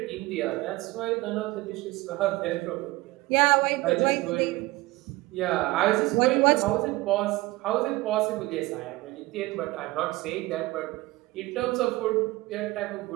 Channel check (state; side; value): quieter; left; 20.0 dB